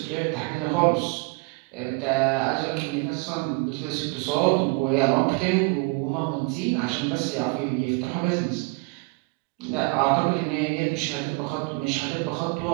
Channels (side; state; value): left; quieter; 29.1 dB